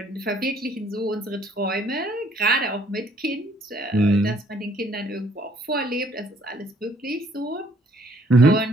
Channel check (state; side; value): normal; both; correlation 0.63